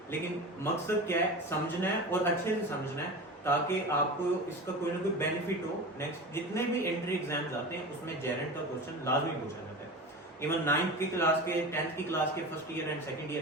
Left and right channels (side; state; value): both; normal; correlation 0.30